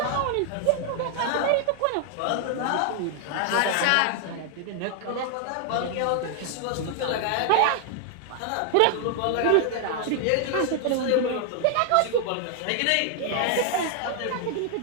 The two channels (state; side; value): different; both; correlation 0.00